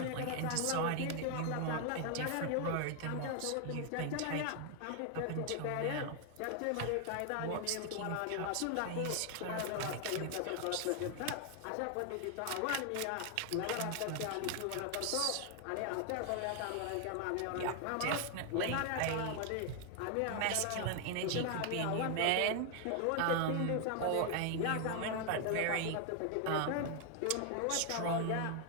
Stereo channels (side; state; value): both; different; correlation 0.00